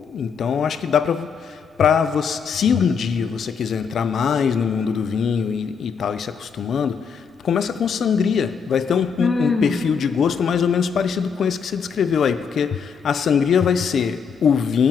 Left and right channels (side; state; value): right; quieter; 6.3 dB